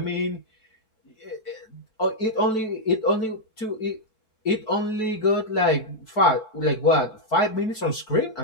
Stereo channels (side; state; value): right; late; 4.6 ms